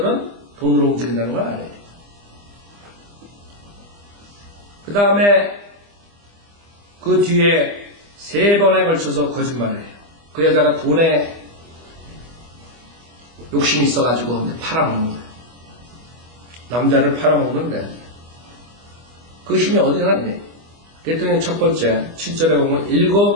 돈으로 움직인다는 걸 알아야 돼요. 그 다음에 그 뒤에 3번에 걸쳐서 거짓말을 해요. 그 여자가 돈에 욕심이 있어가지고 팔아먹는 거예요. 남자를 팔아먹는데 그 힘이 어디 갔니? 그랬더니 첫 번째 7절에 보면 7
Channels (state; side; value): late; left; 25 ms